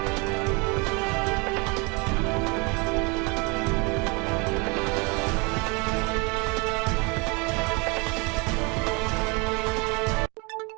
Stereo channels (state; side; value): quieter; left; 29.4 dB